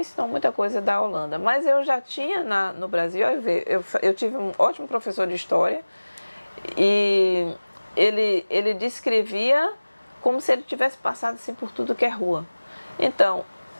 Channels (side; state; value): both; inverted; correlation -1.00